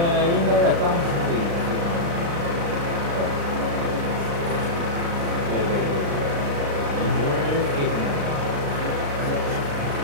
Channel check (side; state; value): left; late; 35 ms